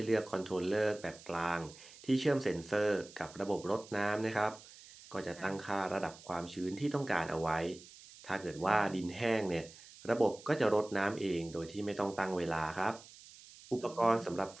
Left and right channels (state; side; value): noise; right; hiss, 19 dB below the sound